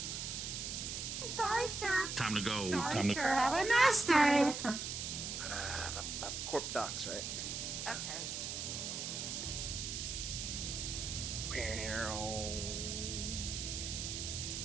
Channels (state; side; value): noise; right; hiss, 4 dB below the sound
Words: Sorry, sir. Time to go. Sorry, Time to. sir. Have a nice day. Corp Docs, right? Okay.